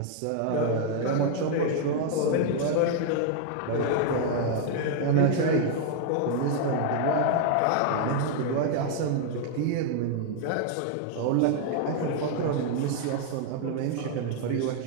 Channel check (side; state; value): both; different; correlation 0.00